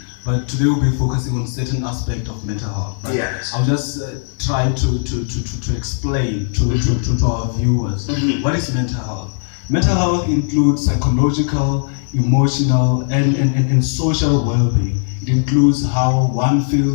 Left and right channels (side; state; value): right; silent; 59 dB below the other